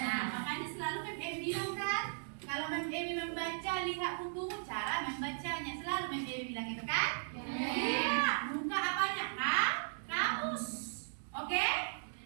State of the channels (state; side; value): silent; left; digital silence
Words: makanya selalu Mem Emi bilang kan, kalau Mem Emi membaca, lihat buku, cara membacanya. Selalu Mem Emi bilang gitu kan? Iya. Buka apanya? Kamus. Oke?